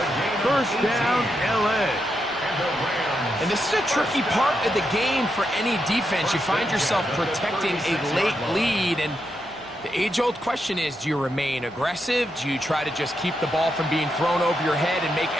First down, L.A. And this is a tricky part of the game for any defense. You find yourself protecting a late lead, and the age-old question is, do you remain aggressive? Do you try to just keep the ball from being thrown over your head and make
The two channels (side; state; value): both; normal; correlation 0.83